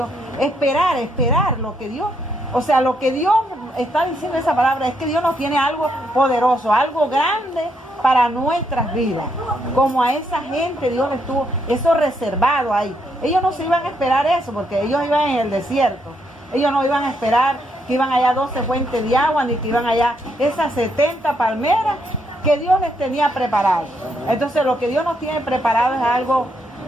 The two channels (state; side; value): normal; both; correlation 0.76